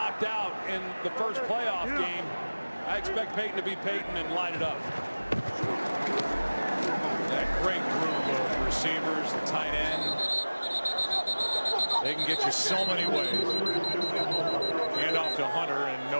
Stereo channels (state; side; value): inverted; both; correlation -1.00